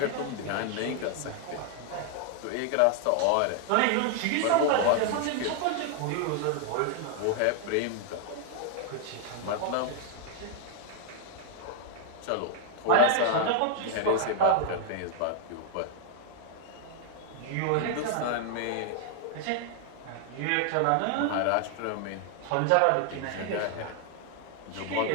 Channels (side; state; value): both; different; correlation 0.00